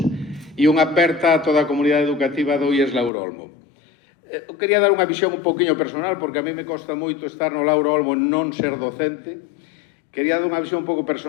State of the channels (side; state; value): right; drops out; at 3.1 s